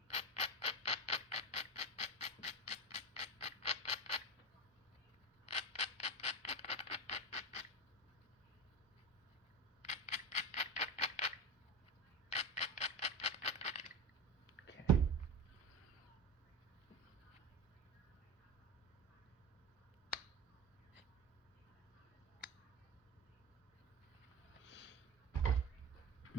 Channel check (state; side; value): normal; both; correlation 0.22